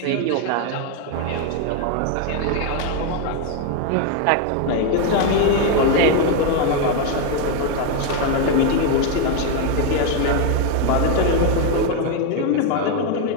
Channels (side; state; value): both; different; correlation 0.01